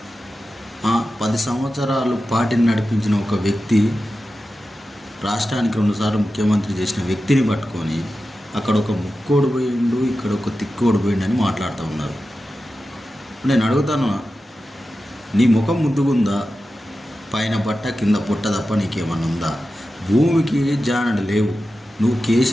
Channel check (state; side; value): normal; both; correlation 0.92